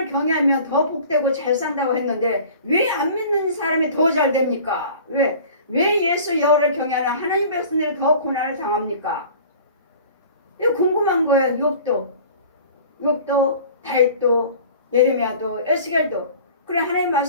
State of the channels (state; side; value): inverted; both; correlation -0.44